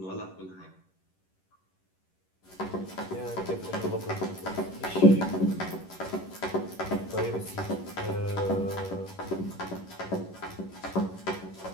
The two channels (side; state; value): right; late; 11 ms